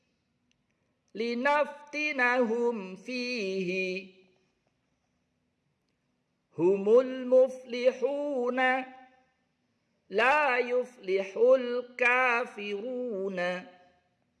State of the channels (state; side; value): identical; both; correlation 1.00